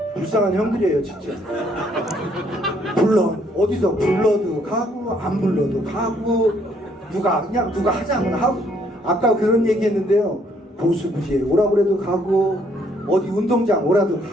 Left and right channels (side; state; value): both; normal; correlation 0.67